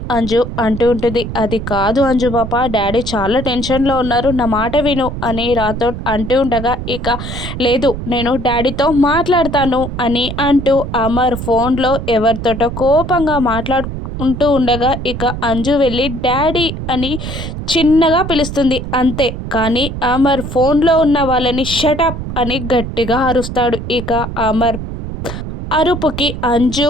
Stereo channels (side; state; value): right; noise; rumble, 7 dB below the sound